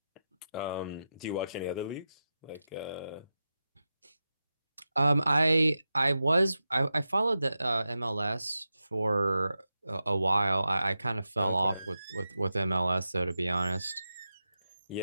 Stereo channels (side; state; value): both; inverted; correlation -0.91